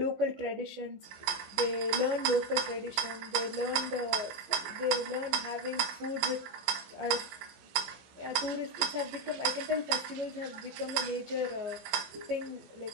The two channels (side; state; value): left; late; 16 ms